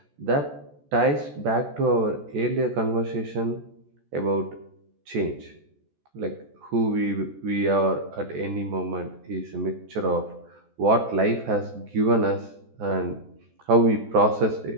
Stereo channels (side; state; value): left; late; 14 ms